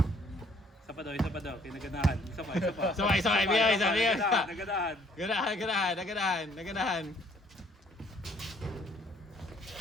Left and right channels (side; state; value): both; normal; correlation 0.62